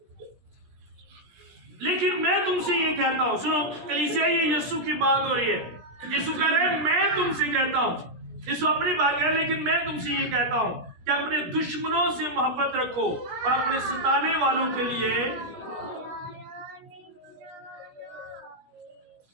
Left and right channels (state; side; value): late; left; 17 ms